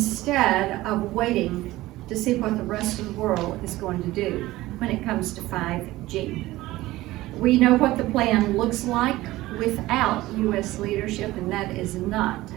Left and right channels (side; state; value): left; quieter; 17.5 dB